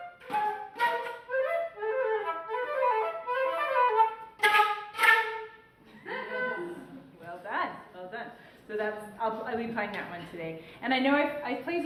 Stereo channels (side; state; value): both; identical; correlation 1.00